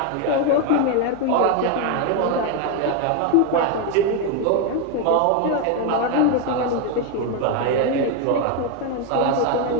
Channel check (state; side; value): different; both; correlation 0.01